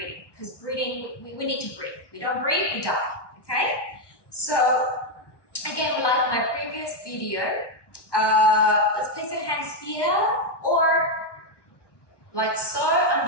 because breathing, we need to breathe. We don't breathe, we die, okay? So again, like my previous video, let's place your hands here or like so. I'm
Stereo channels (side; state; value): right; late; 1.1 ms